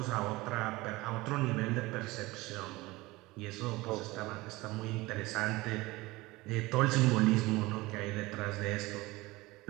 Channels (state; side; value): quieter; left; 20.8 dB